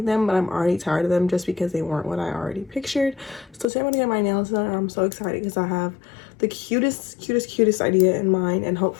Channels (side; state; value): right; drops out; at 3.7 s